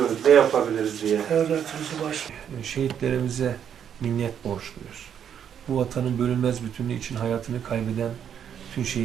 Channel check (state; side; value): quieter; left; 8.7 dB